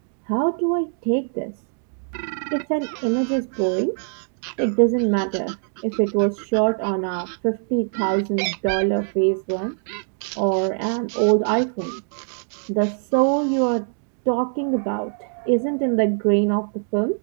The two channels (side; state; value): left; silent; 55 dB below the other